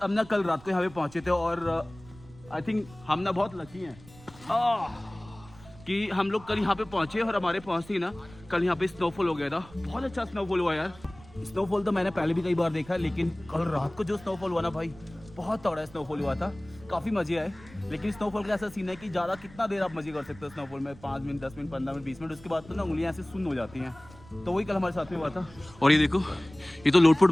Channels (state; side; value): noise; right; rumble, 21 dB below the sound